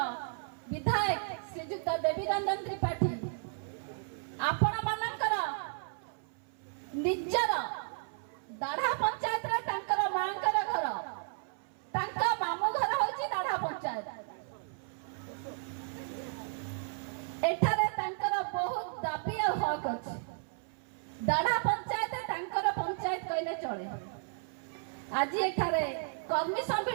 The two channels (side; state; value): left; silent; 55 dB below the other